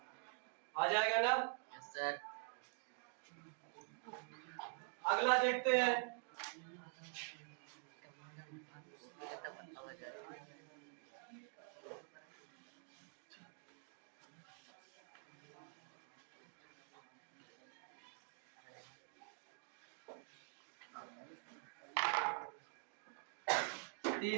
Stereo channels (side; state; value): left; quieter; 39.5 dB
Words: आ जाएगा ना? Yes sir. अगला देखते हैं।